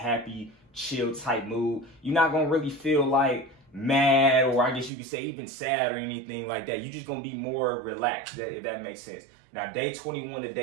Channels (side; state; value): left; drops out; at 4.9 s